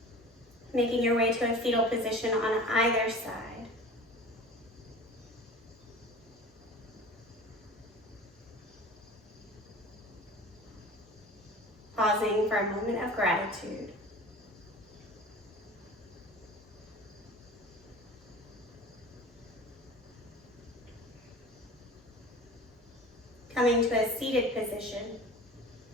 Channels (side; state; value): both; normal; correlation 0.40